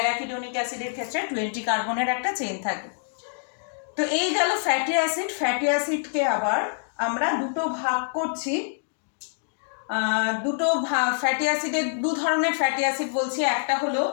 অ্যাসিডের ক্ষেত্রে 20 কার্বনের একটা চেন থাকে। তো এই গেল ফ্যাটি অ্যাসিড। ফ্যাটি অ্যাসিডকে আবার আমরা দুটো ভাগ করছি। ফ্যাটি অ্যাসিডের দু ধরনের ফ্যাটি অ্যাসিড বলছি, একটা হলো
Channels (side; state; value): right; silent; digital silence